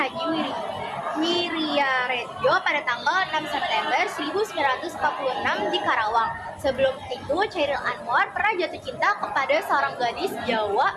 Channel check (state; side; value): identical; both; correlation 1.00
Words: Wiryaredjo pada tanggal 6 September 1946 di Karawang. Sebelum itu, Khairil Anwar pernah jatuh cinta kepada seorang gadis